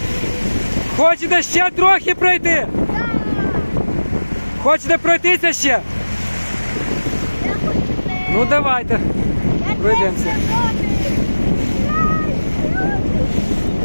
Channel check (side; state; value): both; inverted; correlation -1.00